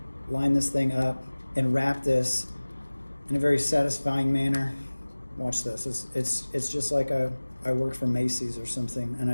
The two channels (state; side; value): inverted; both; correlation -1.00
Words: line this thing up and wrap this in a very satisfying manner. Watch this. It's just like I worked for Macy's or something and